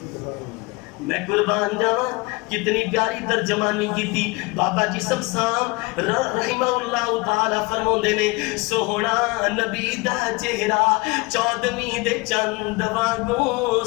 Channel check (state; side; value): quieter; right; 25.5 dB